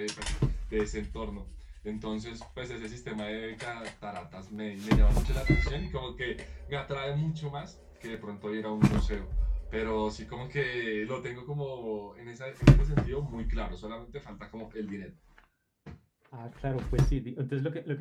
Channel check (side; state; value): both; identical; correlation 1.00